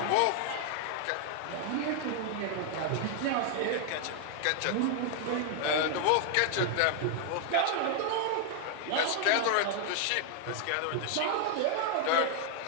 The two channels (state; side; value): different; both; correlation 0.00